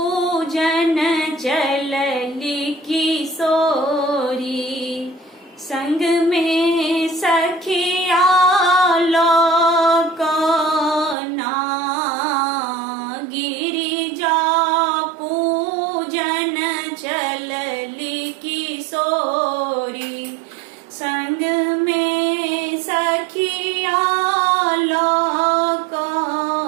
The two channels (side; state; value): left; drops out; at 11.2 s